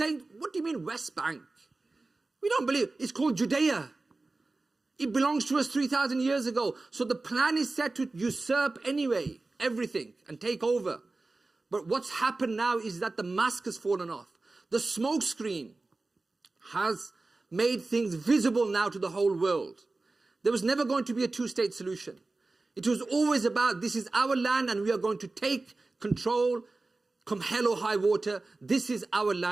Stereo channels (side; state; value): left; quieter; 3.3 dB